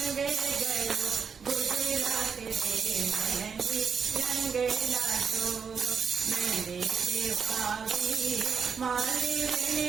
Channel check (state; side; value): quieter; left; 6.2 dB